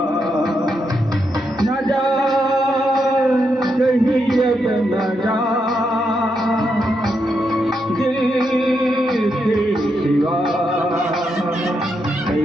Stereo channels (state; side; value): normal; both; correlation 0.81